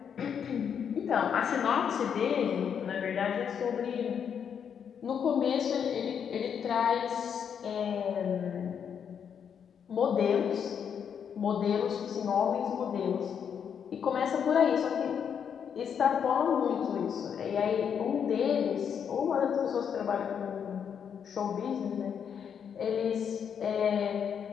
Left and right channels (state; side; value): quieter; right; 7.7 dB